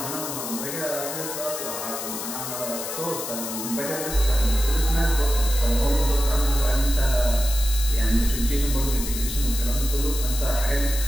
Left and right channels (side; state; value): left; noise; hiss, 6 dB below the sound